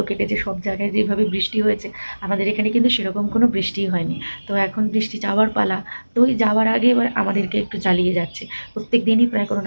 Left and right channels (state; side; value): inverted; both; correlation -1.00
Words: কেটেছে সব জায়গায়, যেভাবে বৃষ্টি হয়েছে। আমাদের এখানে কিন্তু সেরকম কোনো বৃষ্টিই হয়নি। তো এখন বৃষ্টি যাওয়ার পালা। তো ওই যাওয়ার আগে এবার আমাদেরকে একটু জ্বালিয়ে যাচ্ছে। প্রত্যেক দিনই প্রায় কোনো